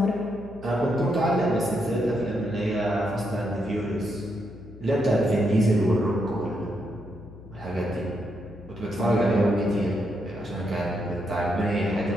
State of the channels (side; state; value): left; noise; hum, 17 dB below the sound